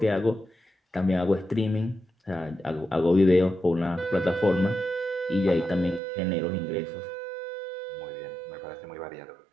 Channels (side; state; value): left; drops out; at 6.0 s